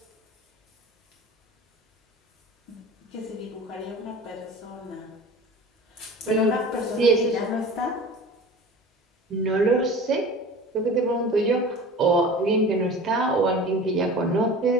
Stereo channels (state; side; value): normal; both; correlation 0.39